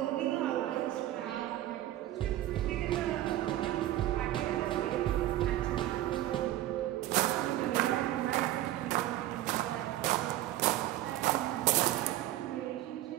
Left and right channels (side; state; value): left; quieter; 14.3 dB